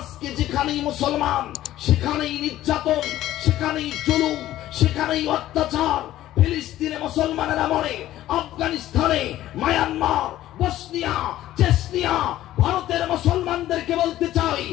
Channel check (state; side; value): quieter; right; 14.0 dB